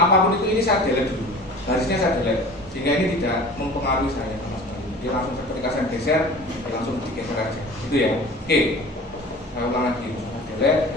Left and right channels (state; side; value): normal; both; correlation 0.41